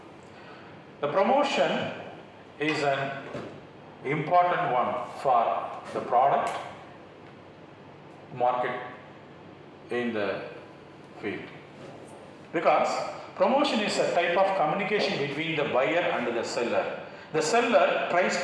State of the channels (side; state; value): both; identical; correlation 1.00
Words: The promotion is an important one for the product market in the field, because promotion is a type of communication between the buyer and the seller. The seller tries